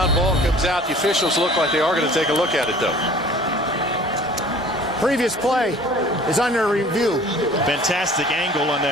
ball comes out. The officials look like they are going to take a look at it, though. Previous play is under review. Fantastic angle on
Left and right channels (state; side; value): normal; both; correlation 0.48